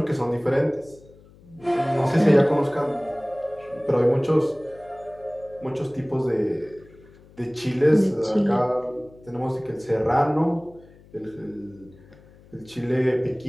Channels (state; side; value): noise; left; hum, 25 dB below the sound